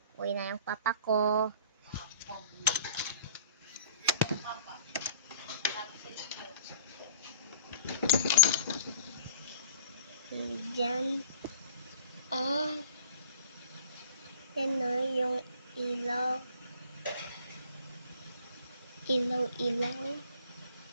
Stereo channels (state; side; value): inverted; both; correlation -0.47